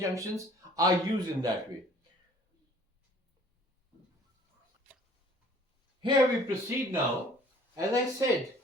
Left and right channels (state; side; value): normal; both; correlation 0.53